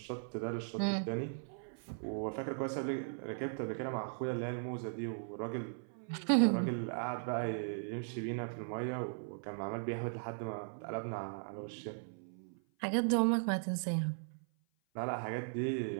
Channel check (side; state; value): left; silent; 52 dB below the other